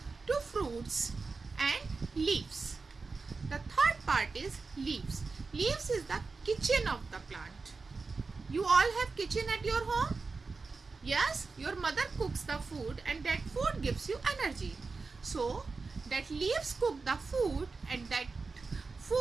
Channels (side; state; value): left; quieter; 4.2 dB